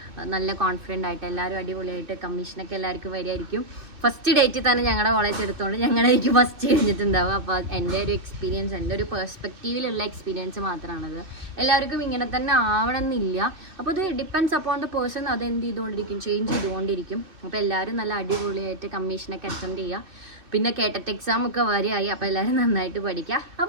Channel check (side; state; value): left; late; 2.6 ms